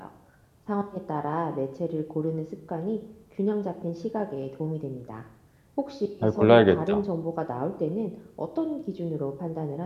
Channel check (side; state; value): both; identical; correlation 1.00